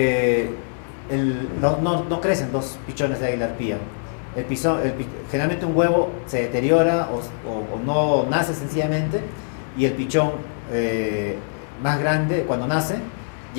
no crecen 2 pichones de águila arpía. Generalmente un huevo se deteriora o no nace sencillamente, y el pichón más grande cuando nace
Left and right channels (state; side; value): silent; right; digital silence